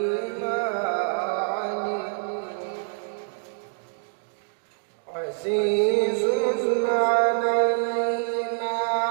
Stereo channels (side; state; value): left; silent; digital silence